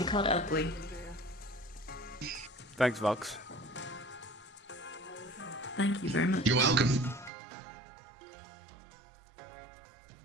called Oakley. Thanks, Vox. Thank you very much. You're welcome.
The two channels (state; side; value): drops out; left; at 7.3 s